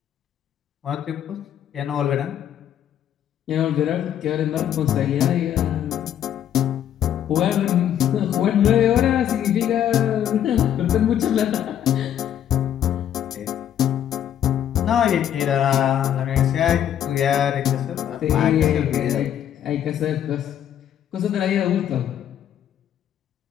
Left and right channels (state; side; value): quieter; right; 10.2 dB